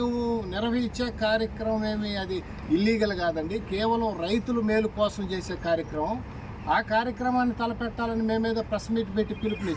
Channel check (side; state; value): both; identical; correlation 1.00